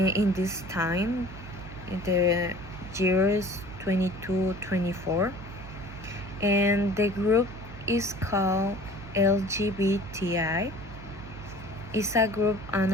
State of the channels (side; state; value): right; noise; hum, 14 dB below the sound